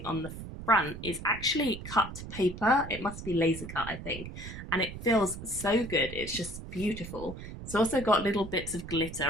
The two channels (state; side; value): noise; right; rumble, 10 dB below the sound